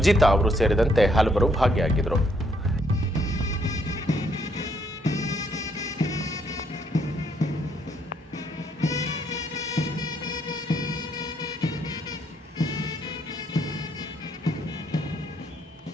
ಅವರು ಸೇರಿದಂತೆ ಹಲವರು ಭಾಗಿಯಾಗಿದ್ದರು.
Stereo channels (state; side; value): normal; both; correlation 0.71